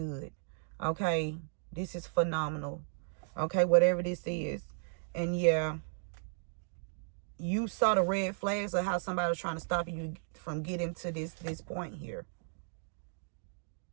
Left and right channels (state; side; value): silent; left; digital silence